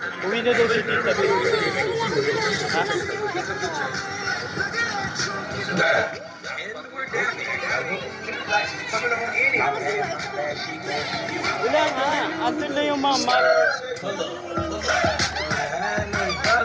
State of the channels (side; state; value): both; identical; correlation 1.00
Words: Uwi na daw si Tita B. Ha? Wala nga. Andun na yung mama.